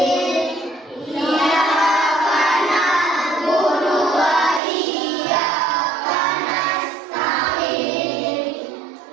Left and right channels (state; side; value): drops out; left; at 4.6 s